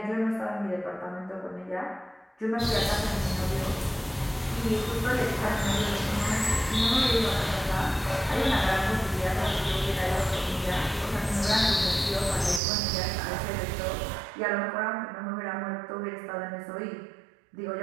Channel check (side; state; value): left; drops out; at 12.6 s